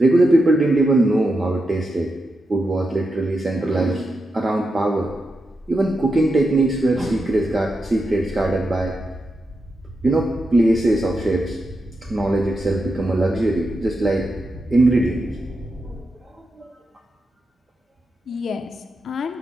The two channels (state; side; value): normal; both; correlation 0.87